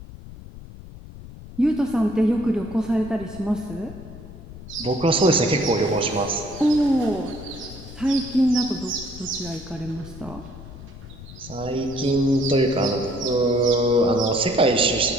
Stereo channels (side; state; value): left; noise; rumble, 15 dB below the sound